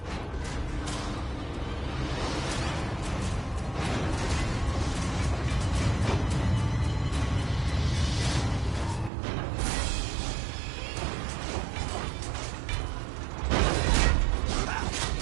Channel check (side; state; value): left; drops out; at 9.1 s